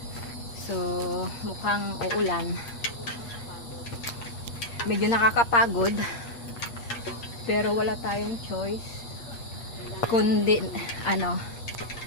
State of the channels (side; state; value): right; late; 8.6 ms